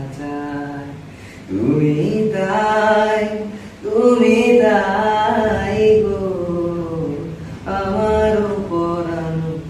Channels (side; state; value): both; identical; correlation 1.00